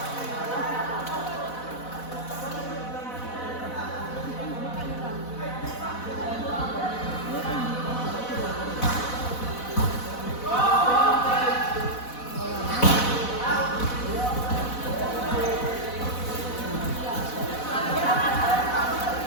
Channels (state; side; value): late; right; 4.1 ms